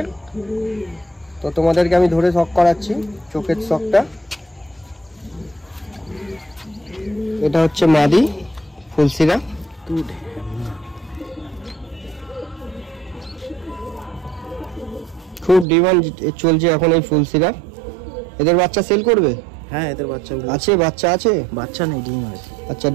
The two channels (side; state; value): left; drops out; at 15.7 s